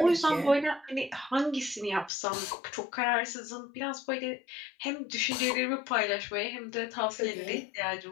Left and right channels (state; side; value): drops out; right; at 2.1 s